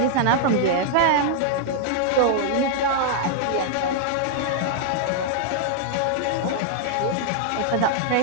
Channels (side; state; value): both; different; correlation 0.00